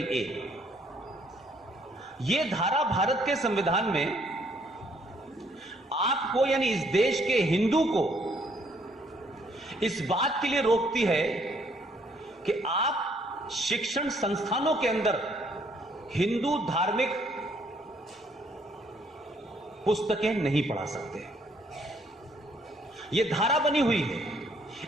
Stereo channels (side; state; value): both; normal; correlation 0.66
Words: A। यह धारा भारत के संविधान में आपको यानी इस देश के हिंदू को इस बात के लिए रोकती है कि आप शिक्षण संस्थानों के अंदर हिंदू धार्मिक पुस्तकें नहीं पढ़ा सकते। यह धारा बनी हुई है।